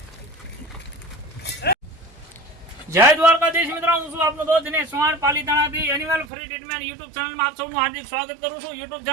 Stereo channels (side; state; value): left; drops out; at 6.2 s